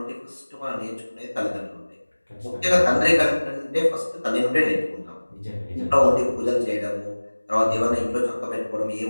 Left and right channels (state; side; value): inverted; both; correlation -1.00